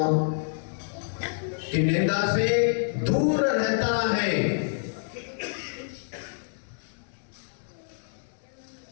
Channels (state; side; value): silent; right; digital silence